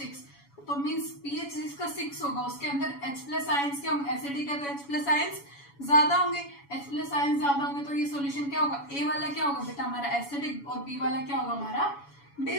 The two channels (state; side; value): late; right; 7.1 ms